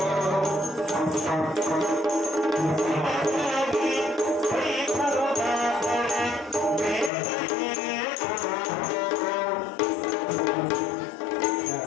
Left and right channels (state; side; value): drops out; right; at 7.1 s